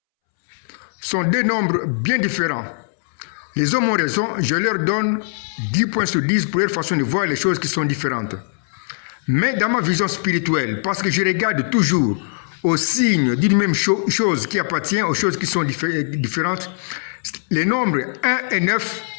sont 2 nombres bien différents. Les hommes ont raison, je leur donne 10 points sur 10 pour leur façon de voir les choses qui sont différentes. Mais dans ma vision spirituelle, parce que je regarde toujours aux signes d'une même chose qui appartient aux choses qui sont différentes, les nombres 1 et 9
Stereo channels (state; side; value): silent; right; 65 dB below the other